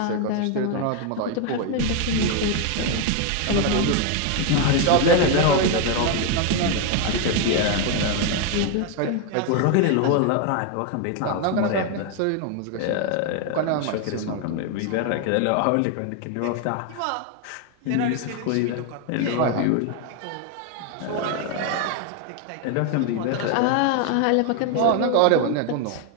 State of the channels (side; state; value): both; different; correlation 0.01